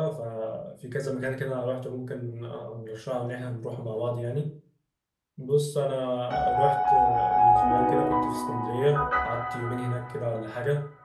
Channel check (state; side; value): identical; both; correlation 1.00